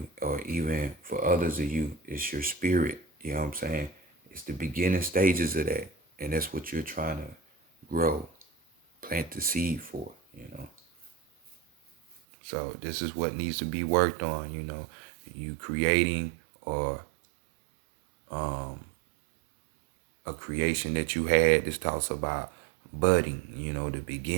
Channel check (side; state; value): left; drops out; at 12.2 s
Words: or even for others of you, it's your spirit, you know what I'm saying? It's the beginning stages of that. And that's what you're trying to grow, plant the seed for, So this is what needs to be worked on, you creating or a creation that you had. This talks about budding, the